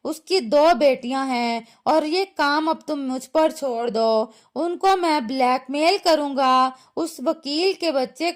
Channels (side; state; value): both; identical; correlation 1.00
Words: उसकी 2 बेटियां हैं और ये काम अब तुम मुझ पर छोड़ दो। उनको मैं ब्लैकमेल करूंगा, उस वकील के बच्चे